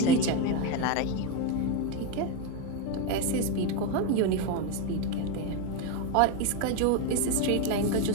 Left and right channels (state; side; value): different; both; correlation 0.03